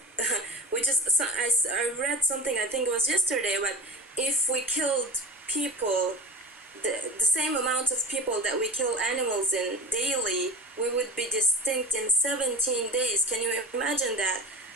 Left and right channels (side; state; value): both; normal; correlation 0.35